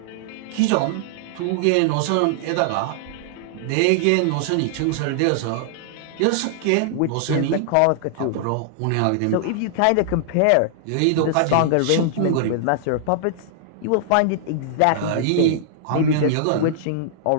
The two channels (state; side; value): different; both; correlation -0.01